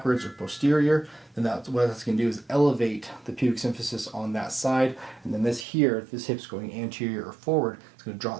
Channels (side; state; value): left; drops out; at 5.7 s